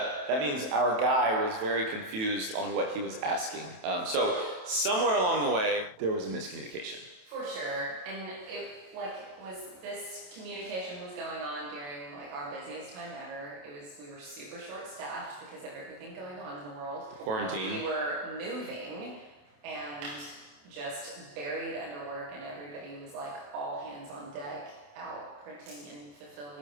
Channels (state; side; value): late; left; 28 ms